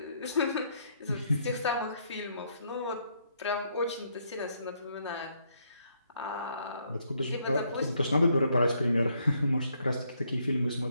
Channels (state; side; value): inverted; both; correlation -0.72